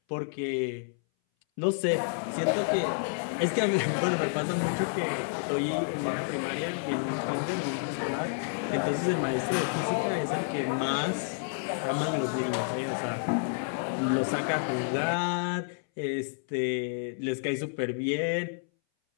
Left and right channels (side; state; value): right; silent; 58 dB below the other